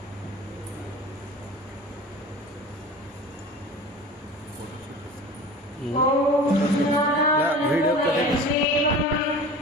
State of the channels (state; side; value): normal; both; correlation 0.38